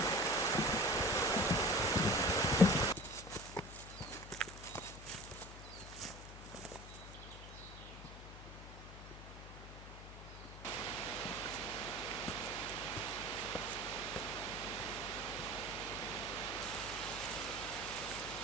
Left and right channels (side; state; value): left; noise; hum, 13 dB below the sound